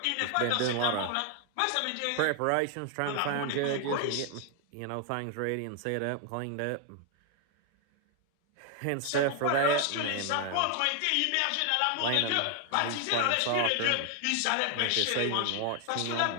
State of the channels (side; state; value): both; different; correlation 0.00